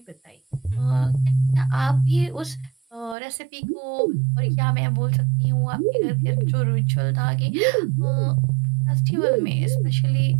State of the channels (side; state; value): left; drops out; at 3.2 s